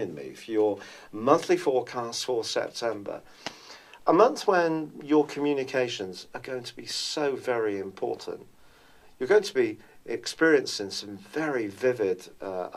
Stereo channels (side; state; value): both; identical; correlation 1.00